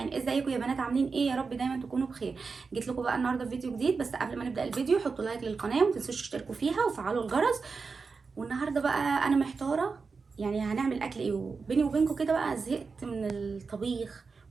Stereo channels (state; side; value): quieter; left; 4.7 dB